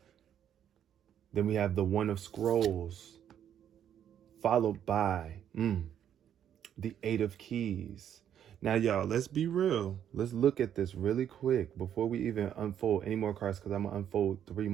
Then we have the 1 of Scrolls, followed by the 8 of Keys. Now, y'all, let's be real. Let's look at this really quick before we even unfold any more cards, because I'm going to unfold 3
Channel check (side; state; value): left; quieter; 9.7 dB